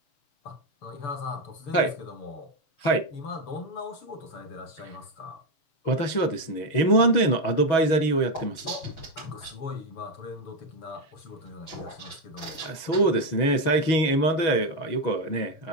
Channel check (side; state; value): right; late; 6.2 ms